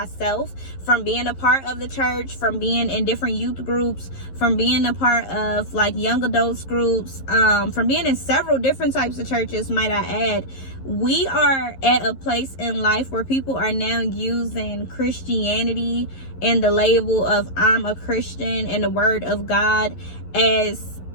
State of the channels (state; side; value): late; right; 11 ms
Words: from being a part of the church, from being in different youth groups, from being a part of like young adults groups, from being in several different types of churches, might I add. We are at a place in life where people are now using Christianity and the label of I'm a Christian and the word of God as